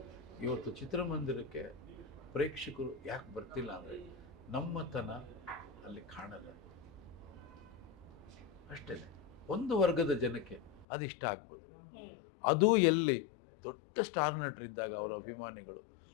ಇವತ್ತು ಚಿತ್ರಮಂದಿರಕ್ಕೆ ಪ್ರೇಕ್ಷಕರು ಯಾಕೆ ಬರ್ತಿಲ್ಲ ಅಂದರೆ ನಮ್ಮತನ ಅಲ್ಲಿ ಕಾಣಲ್ಲ, ಅಷ್ಟೇ. ಒಂದು ವರ್ಗದ ಜನಕ್ಕೆ ಅದು ಇಷ್ಟ ಆಗ್ಬೋದು. ಅದು ಎಲ್ಲಿ ದೊಡ್ಡ ಸ್ಟಾರ್ ನಟರಿದ್ದಾಗ ಅವರ ಅಭಿಮಾನಿಗಳು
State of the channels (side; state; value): right; drops out; at 10.9 s